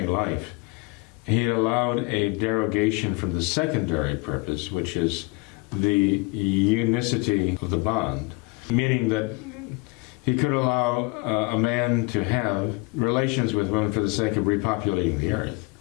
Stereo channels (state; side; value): quieter; right; 27.0 dB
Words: life, He had allowed a derogation from the secondary purpose, which is the unicity of the bond, meaning that He could allow a man to have relations with women for the sake of repopulating the earth.